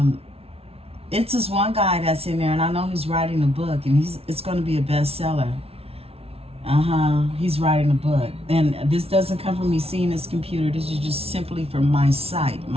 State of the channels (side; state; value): left; late; 0.29 ms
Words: It's this one guy that's in there, and I know he's writing a book, and it's going to be a bestseller. He's writing a book. And this doesn't come from me seeing his computer. This is just simply from my sight,